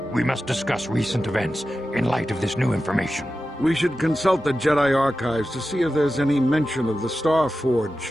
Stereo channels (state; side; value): normal; both; correlation 0.93